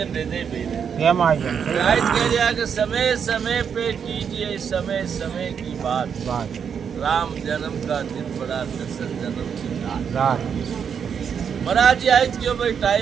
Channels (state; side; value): quieter; left; 7.2 dB